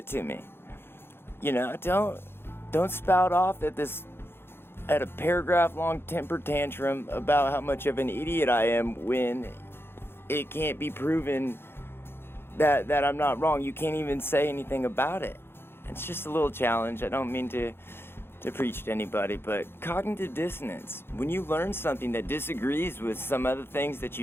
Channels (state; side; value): late; right; 0.11 ms